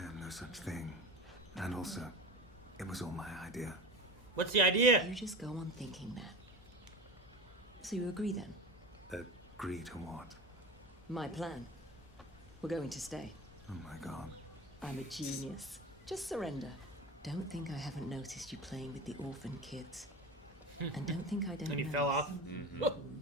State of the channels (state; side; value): normal; both; correlation 0.29